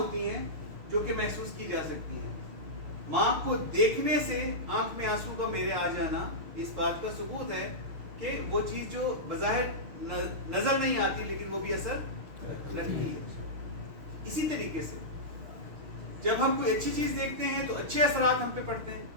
ہیں جو کہ محسوس کی جا سکتی ہیں. ماں کو دیکھنے سے آنکھ میں آنسو کا میرے آ جانا اس بات کا ثبوت ہے کہ وہ چیز جو بظاہر نظر نہیں آتی لیکن وہ بھی اثر رکھتی ہے. اسی طریقے سے جب ہم کوئی اچھی چیز دیکھتے ہیں تو اچھے اثرات ہم پہ پڑتے ہیں,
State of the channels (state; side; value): late; left; 6.5 ms